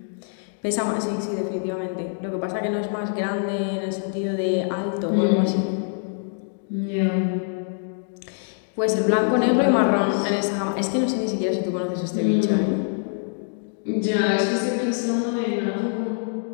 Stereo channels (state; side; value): silent; right; digital silence